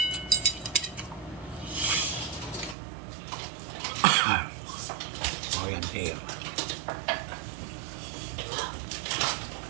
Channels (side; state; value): left; drops out; at 2.8 s